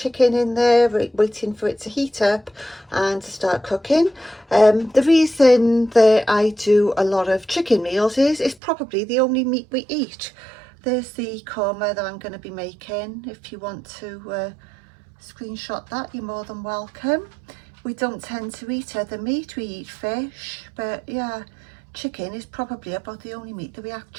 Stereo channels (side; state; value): left; drops out; at 8.6 s